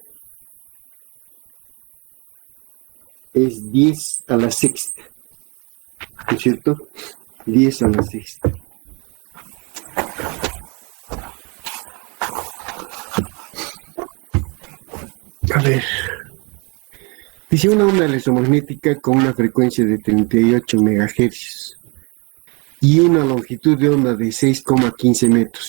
es 10 a la sexta, ¿es cierto? 10 a la sexta. A ver, dice una onda electromagnética con una frecuencia de 38 MHz y una longitud de onda de 6,15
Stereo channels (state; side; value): quieter; left; 29.9 dB